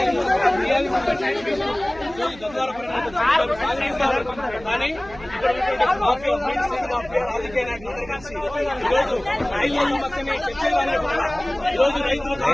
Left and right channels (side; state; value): right; noise; hum, 19 dB below the sound